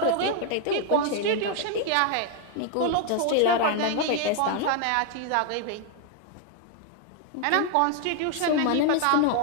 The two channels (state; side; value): different; both; correlation 0.00